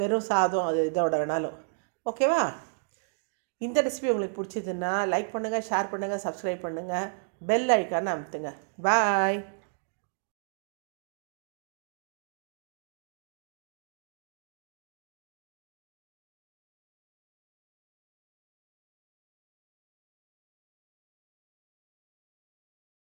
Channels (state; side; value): silent; left; digital silence